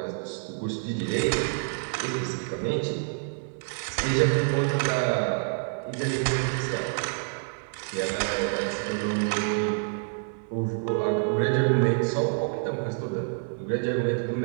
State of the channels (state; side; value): silent; left; 56 dB below the other